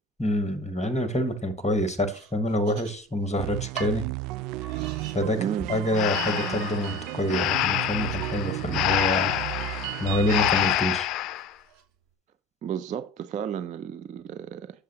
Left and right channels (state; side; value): normal; both; correlation 0.38